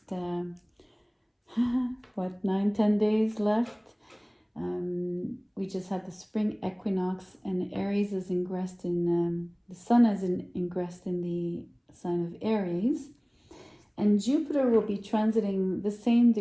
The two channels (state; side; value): identical; both; correlation 1.00